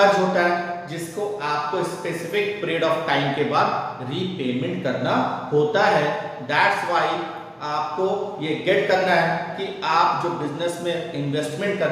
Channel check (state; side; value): identical; both; correlation 1.00